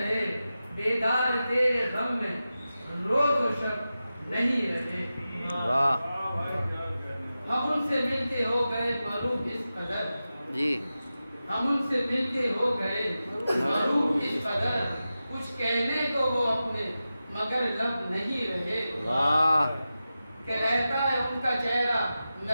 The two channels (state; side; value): inverted; both; correlation -0.93